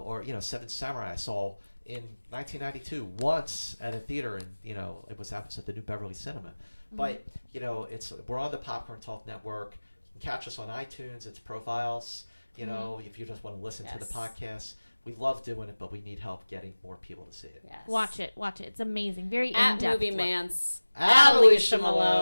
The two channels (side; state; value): both; inverted; correlation -1.00